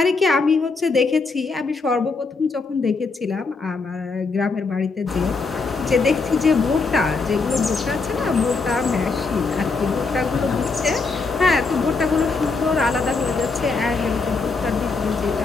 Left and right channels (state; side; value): quieter; right; 4.2 dB